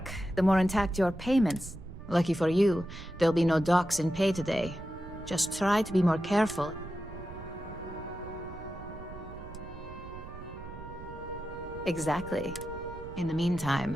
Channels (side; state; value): right; noise; rumble, 15 dB below the sound